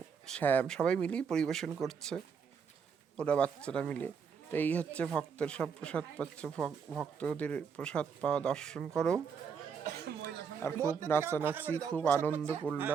শ্যাম সবাই মিলেই পরিবেশন করছে, ওরা বাচ্চারা মিলে। তো এই হচ্ছে ভক্তের সব প্রসাদ পাচ্ছে, ভক্তদের প্রসাদ পাওয়া দর্শন করো। আর খুব নাচানাচি, খুব আনন্দ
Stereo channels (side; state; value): left; quieter; 6.5 dB